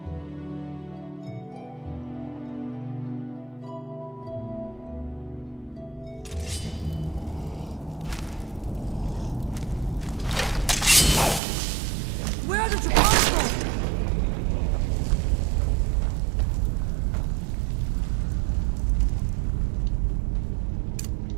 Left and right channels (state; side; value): drops out; left; at 11.4 s